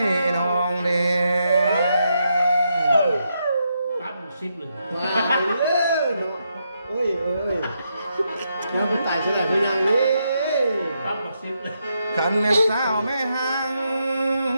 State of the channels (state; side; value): inverted; both; correlation -0.81